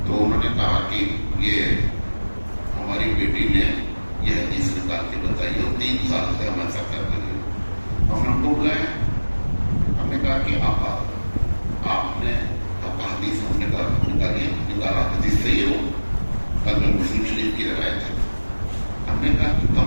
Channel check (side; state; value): both; inverted; correlation -1.00